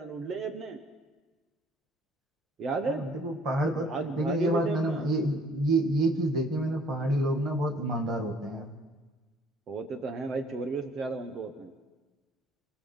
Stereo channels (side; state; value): both; normal; correlation 0.58